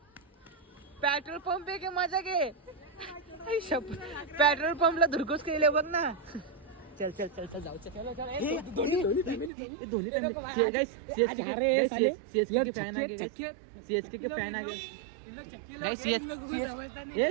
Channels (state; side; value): drops out; left; at 9.5 s